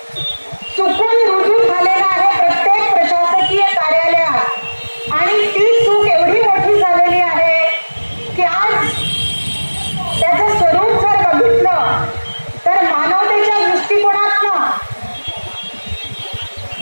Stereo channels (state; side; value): inverted; both; correlation -1.00